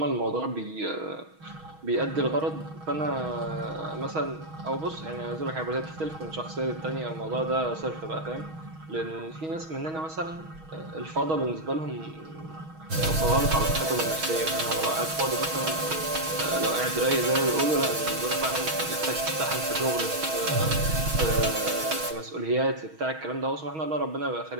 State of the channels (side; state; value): left; late; 6.3 ms